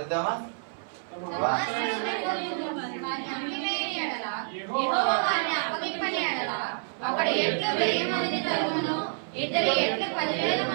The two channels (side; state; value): left; silent; 59 dB below the other